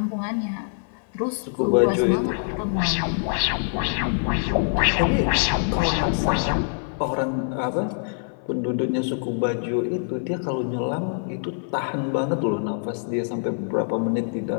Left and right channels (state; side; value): silent; right; 57 dB below the other